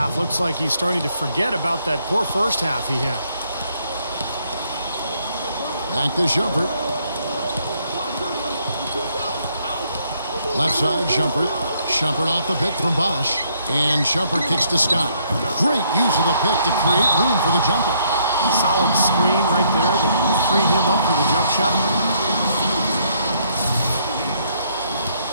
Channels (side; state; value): both; inverted; correlation -0.69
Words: Looks like he's starting to forget about that poor first half he had. Back to Shumpert. Left side, Shumpert. Shumpert off the pick from Bosch. And Shumpert kicks to Scott. Great use of the pick to create room for the jumper. Solid screen right there that freed him up for the jump shot.